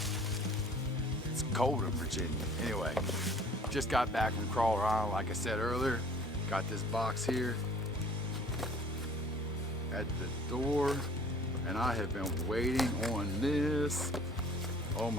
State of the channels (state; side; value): normal; both; correlation 0.52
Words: it's cold in Virginia. Anyway, just got back from Crawler Island, like I said earlier. Got this box here at the door, and I have been waiting on this. Oh